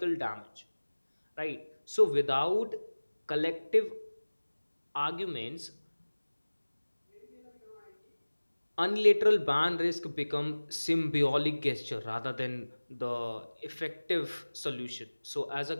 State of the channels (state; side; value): inverted; both; correlation -1.00